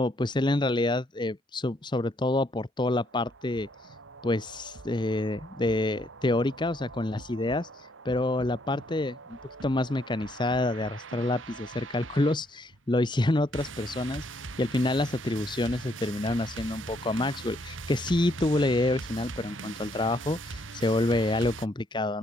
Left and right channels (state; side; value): normal; both; correlation 0.71